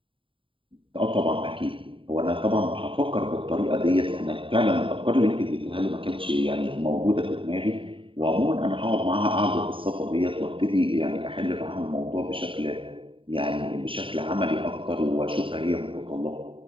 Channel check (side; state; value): left; late; 0.25 ms